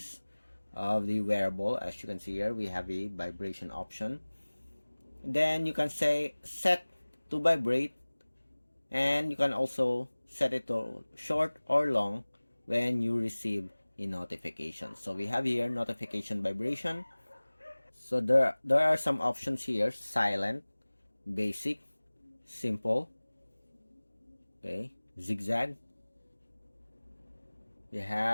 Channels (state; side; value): inverted; both; correlation -1.00